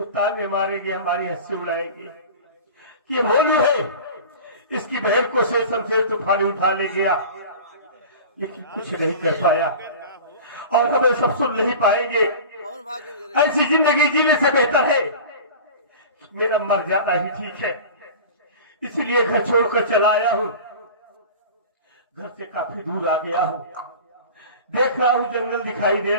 ताने मारेंगे, हमारी हंसी उड़ाएंगे। ये भोलू है, इसकी बहन को से शमशेर तूफानी उठा ले गया, लेकिन कुछ नहीं कर पाया और हमें सब सुन नहीं पाएंगे। ऐसी जिंदगी जीने से बेहतर है मेरा मर जाना ही ठीक है। इसलिए घर छोड़कर चला आया हूं। घर से काफी दूर आ गया हूं। देख रहा हूं जंगल दिखाई दे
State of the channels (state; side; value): inverted; both; correlation -0.36